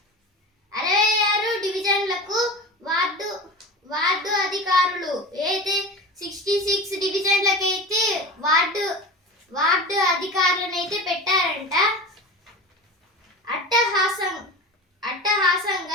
66 డివిజన్లకు వార్డు అధికారులు. అయితే 66 డివిజన్లకు అయితే వార్డు అధికారులను అయితే పెట్టారంట.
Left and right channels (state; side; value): normal; both; correlation 0.30